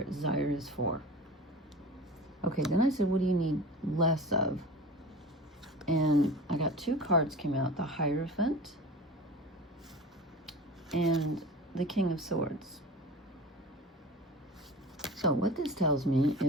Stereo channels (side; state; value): both; normal; correlation 0.35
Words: is for. Okay, then I said, what do you need less of? And I got 2 cards came out, the Hierophant and the King of Swords. So what this tells me